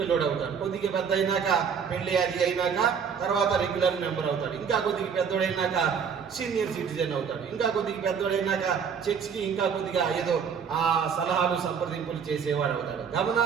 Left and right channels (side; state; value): left; quieter; 6.7 dB